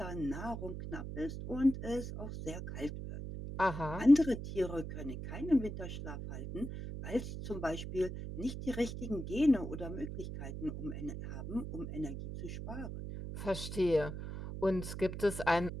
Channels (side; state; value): right; noise; hum, 7 dB below the sound